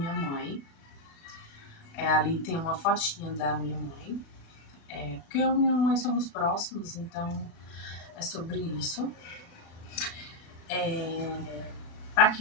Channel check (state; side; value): late; right; 36 ms